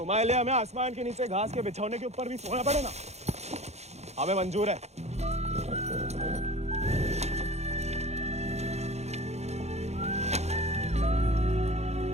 लिए हमें आसमान के नीचे घास के बिछौने के ऊपर भी सोना पड़े ना, हमें मंजूर है।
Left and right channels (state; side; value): late; left; 0.32 ms